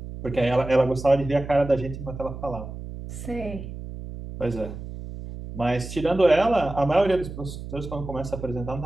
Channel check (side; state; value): right; noise; hum, 10 dB below the sound